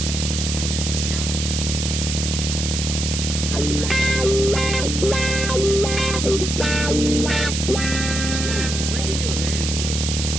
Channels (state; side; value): noise; right; hiss, 3 dB below the sound